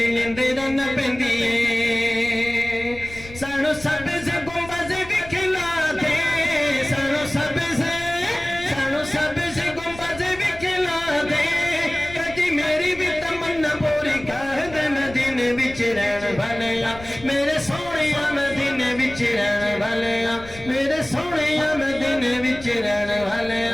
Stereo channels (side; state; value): left; noise; rumble, 17 dB below the sound